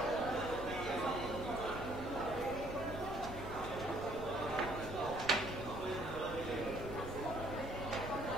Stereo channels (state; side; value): normal; both; correlation 0.63